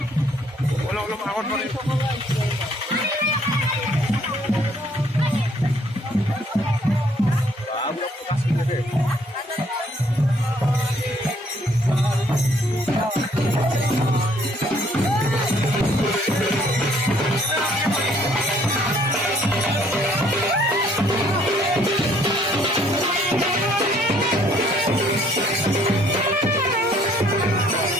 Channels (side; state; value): both; normal; correlation 0.63